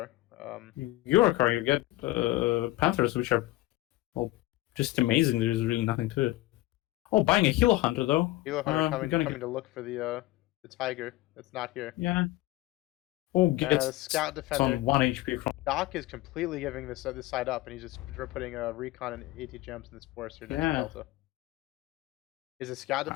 Eurocorps, you get Panthers, which are, well, just amazing. There's really nothing to it. Oh, buying a Hilo Hunter, though. Hilo Hunter coming to look for the Tiger that's not here. Yeah. Oh, gets Scout Defender. on 1 HP from... Dokk is completely giving this side up, and he's just putting recon and AT gems in this forest here next to Delta. Is the Scout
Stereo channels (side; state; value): right; quieter; 18.0 dB